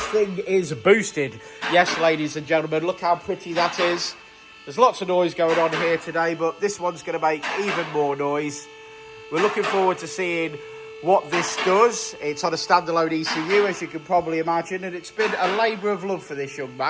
thing is boosted. Yes, ladies and gentlemen, look how pretty that is. There's lots of noise going on here today, but this one's going to make even more noise. We're looking forward to seeing what this does. It's on a standalone ECU, as you can probably imagine, and it's been a labour of love for this young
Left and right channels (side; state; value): both; identical; correlation 1.00